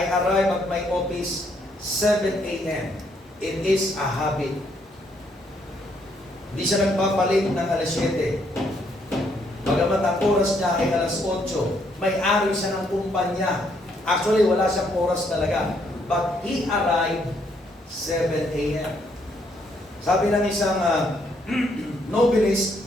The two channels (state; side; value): normal; both; correlation 0.71